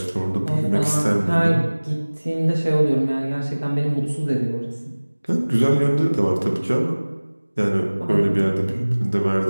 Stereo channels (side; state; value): both; inverted; correlation -1.00